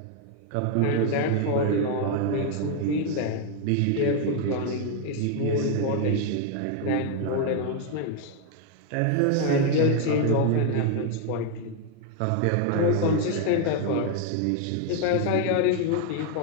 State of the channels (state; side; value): different; both; correlation 0.01